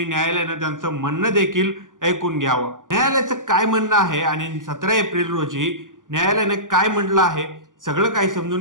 न्यायालयानं त्यांचं म्हणणं देखील ऐकून घ्यावं. न्यायालयाचं काय म्हणणं आहे आणि 17 एप्रिल रोजी न्यायालयाने काय म्हटलं आहे सगळं काही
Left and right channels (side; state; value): left; late; 0.88 ms